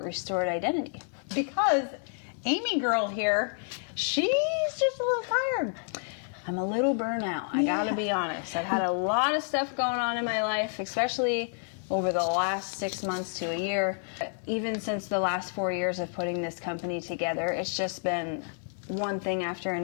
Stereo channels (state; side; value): silent; right; 58 dB below the other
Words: Restored Identity. Because Amy girl here, she's just a little tired. I'm a little burnout, I gotta be honest. I've had a lot of stuff going on in my life, especially over the last 6 months to a year. Even since the last 4 years of putting this company together, it's just been one thing after